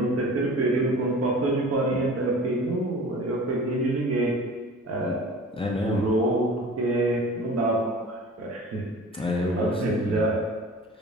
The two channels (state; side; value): normal; both; correlation 0.41